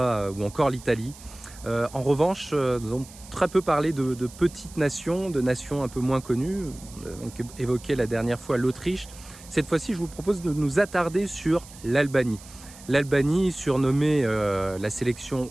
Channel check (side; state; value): right; noise; hiss, 19 dB below the sound